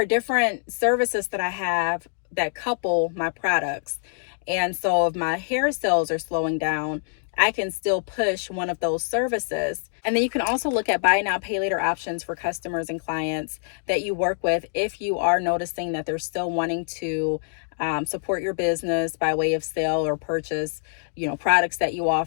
different services that I have that couple my products. And so if my hair sales are slowing down, I can still push one of those services. And then you can also look at buy now, pay later options for customers and clients that you work with if you are noticing that they're still wanting to support your business by way of sale or purchase, products that you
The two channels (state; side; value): silent; right; digital silence